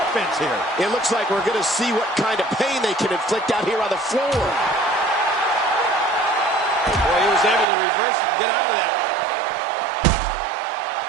offense here. It looks like we're going to see what kind of pain they can inflict out here on the floor. Boy, he was able to reverse and get out of that.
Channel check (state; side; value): drops out; left; at 7.7 s